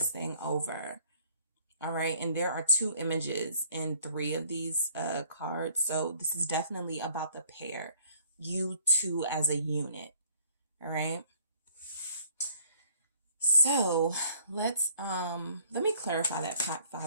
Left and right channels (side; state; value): both; inverted; correlation -0.60